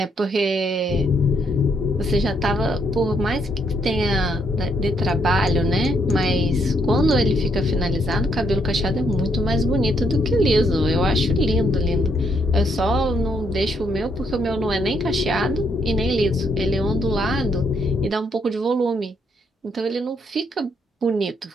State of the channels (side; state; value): both; normal; correlation 0.73